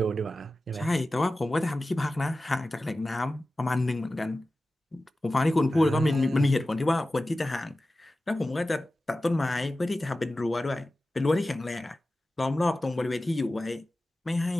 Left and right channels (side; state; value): both; normal; correlation 0.95